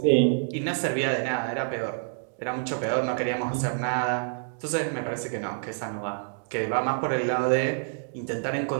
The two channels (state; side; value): silent; left; digital silence